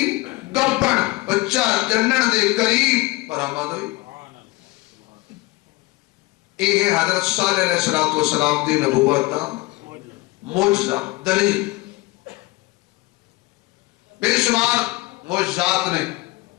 گپن بچہ جنن دے قریب برآمد ہوئی. یہ حضرت صالح علیہ السلام دی نبوت دا معجزہ دلیل. بے شمار معجزات نے،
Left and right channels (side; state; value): right; quieter; 21.9 dB